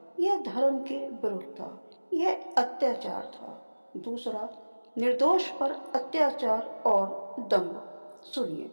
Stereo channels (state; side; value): inverted; both; correlation -1.00